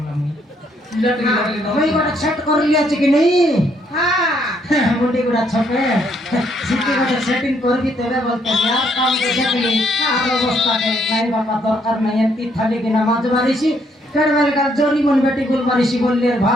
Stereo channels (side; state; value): both; normal; correlation 0.71